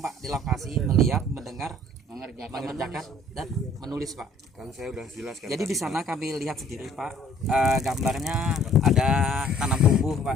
Pak di lokasi melihat, mendengar, mengerjakan dan menulis Pak. Kan saya udah jelaskan. Jadi di sana kami lihat sendiri Pak, gambarnya ada tanam tumbuh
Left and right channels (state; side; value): normal; both; correlation 0.57